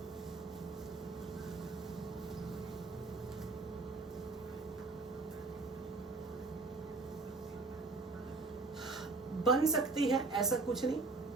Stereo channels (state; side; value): quieter; left; 3.7 dB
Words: बन सकती है, ऐसा कुछ नहीं,